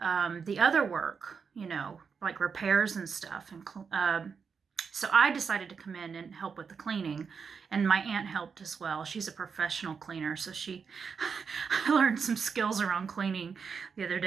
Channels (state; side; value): quieter; left; 5.9 dB